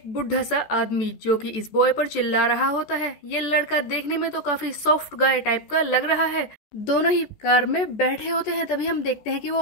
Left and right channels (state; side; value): late; right; 14 ms